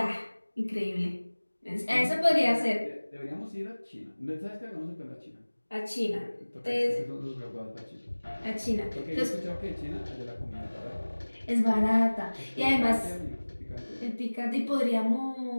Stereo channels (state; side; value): inverted; both; correlation -1.00